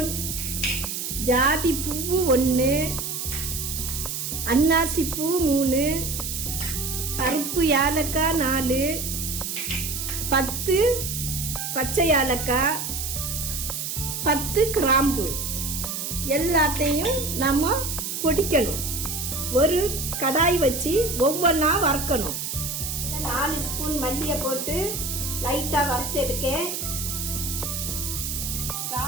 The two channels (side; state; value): right; noise; hiss, 4 dB below the sound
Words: ஜாதி பூவு 1, அன்னாசி பூ 3, கருப்பு ஏலக்காய் 4, 10 பச்சை ஏலக்காய், 10 கிராம்பு எல்லாத்தையும் நம்ம பொடிக்கணும். ஒரு கடாய் வச்சு ஒவ்வொன்றா வறுக்கணும். 4 ஸ்பூன் மல்லியை போட்டு லைட்டா வறுத்து எடுக்கேன்.